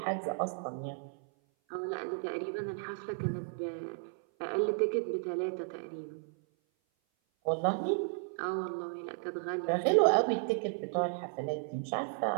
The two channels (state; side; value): silent; left; 55 dB below the other